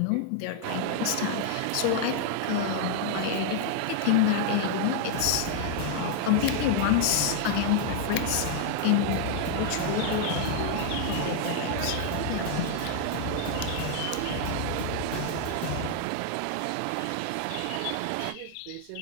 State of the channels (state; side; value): different; both; correlation 0.00